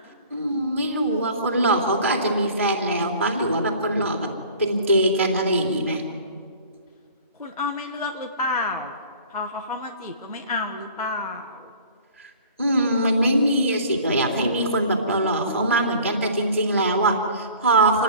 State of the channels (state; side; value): inverted; both; correlation -0.47